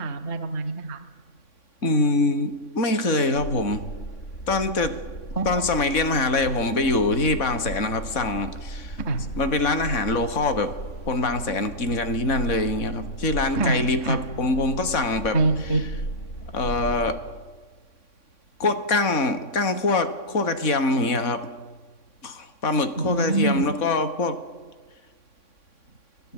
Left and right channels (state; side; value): late; right; 3.6 ms